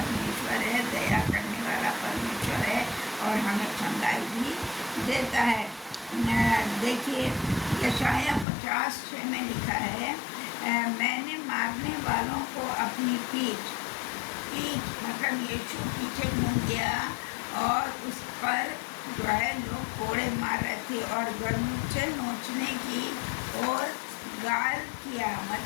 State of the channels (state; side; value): drops out; right; at 8.5 s